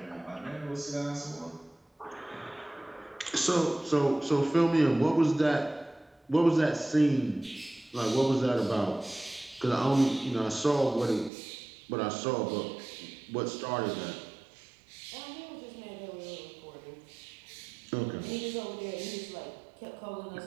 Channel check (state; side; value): drops out; left; at 11.3 s